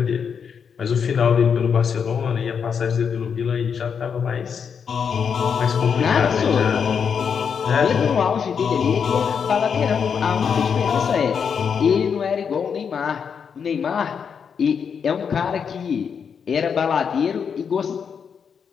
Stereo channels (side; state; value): right; quieter; 6.8 dB